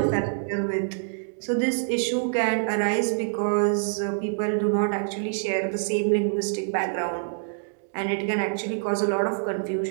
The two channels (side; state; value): left; silent; digital silence